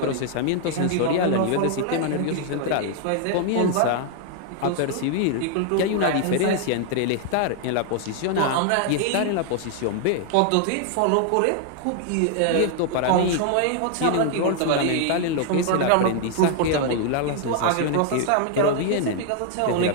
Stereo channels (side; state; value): both; different; correlation 0.00